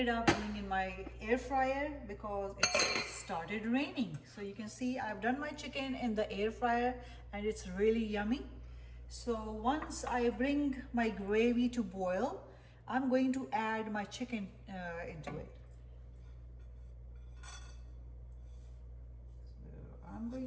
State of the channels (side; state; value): both; identical; correlation 1.00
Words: up doing in my air fryer because it started raining. So you can see I've done my chicken in the air fryer and it's really yummy. So once I bring my gravy to boil, I'm going to add my chicken into it. So I'm